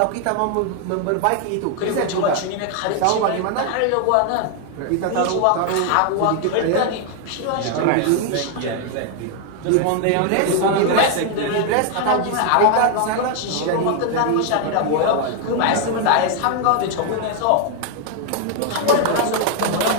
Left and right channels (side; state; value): both; different; correlation 0.00